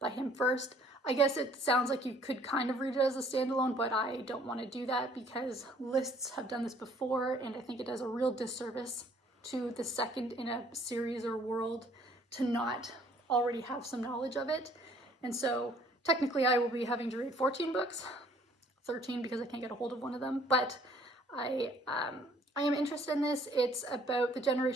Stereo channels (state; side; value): normal; both; correlation 0.59